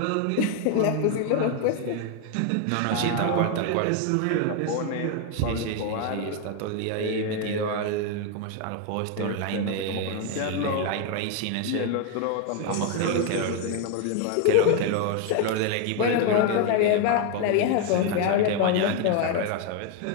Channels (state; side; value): different; both; correlation 0.01